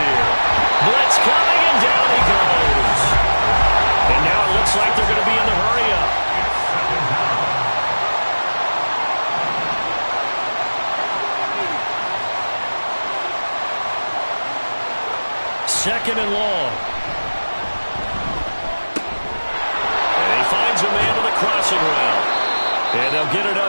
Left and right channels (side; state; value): both; inverted; correlation -1.00